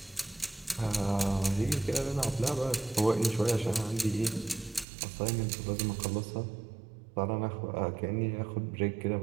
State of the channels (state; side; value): drops out; left; at 4.9 s